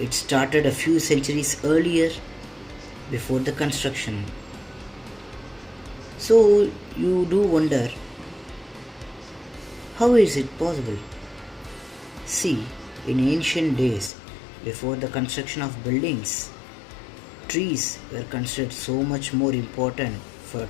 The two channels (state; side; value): drops out; right; at 14.1 s